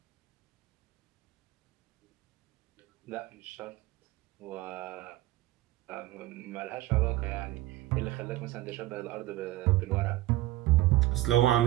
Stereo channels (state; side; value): quieter; left; 16.8 dB